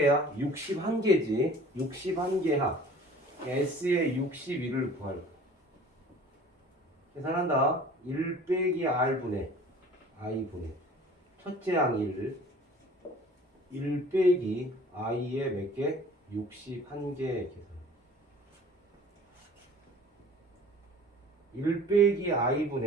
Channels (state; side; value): normal; both; correlation 0.47